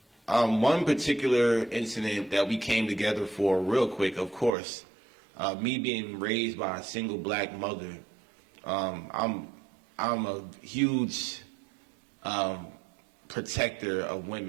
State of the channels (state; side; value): drops out; left; at 4.5 s